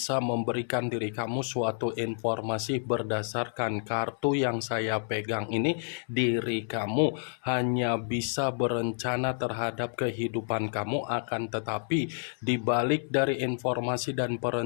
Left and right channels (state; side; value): silent; right; 58 dB below the other